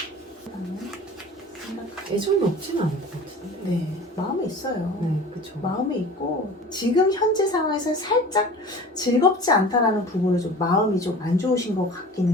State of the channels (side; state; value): both; normal; correlation 0.40